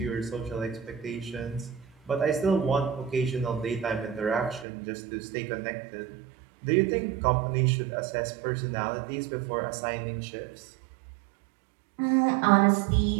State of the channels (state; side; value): drops out; left; at 4.7 s